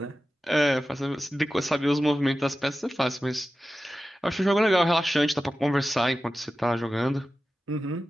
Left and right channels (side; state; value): both; normal; correlation 0.94